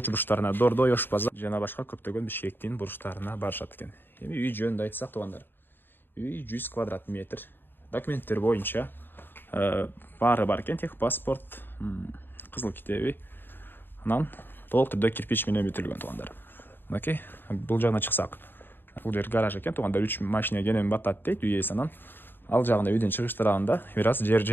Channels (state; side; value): late; right; 0.096 ms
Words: Дордой, Ош базар жана башка көптөгөн Бишкектин бурчтарына барышат экен. Эми үй жөнүндө айтсак тугандар, үй 100 квадрат метр. Документтер боюнча баары бар экен, тех паспорт, кызыл китеби. Анан толук түрдө кирпич менен бүтүлгөн тугандар. Мынакей, бул жагына чыксак, бул жер гараж экен тугандар. 3 машина кенен батат дейт үй ээси. Анан ал жагында үйдөн чыгыш тарабында бир аз жер